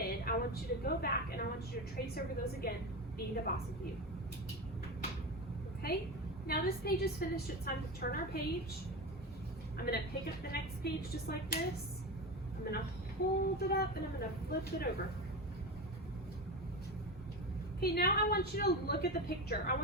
I want you to go back and I want you to trace over those again. Be the boss of you. Okay? Now this page is finished. It's time to turn our page. I'm going to pick up the next page just like this. I'm going to hold it up and I'm going to flip it over. Okay, now I want you to look at the picture. I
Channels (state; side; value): normal; both; correlation 0.22